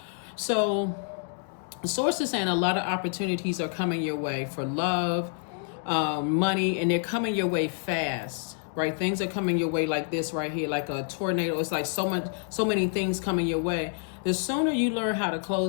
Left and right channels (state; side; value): silent; right; 57 dB below the other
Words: So the source is saying a lot of opportunities are coming your way for love, money, and they're coming your way fast, right? Things are coming your way like this right here, like a tornado. It's like so many things coming your way. The sooner you learn how to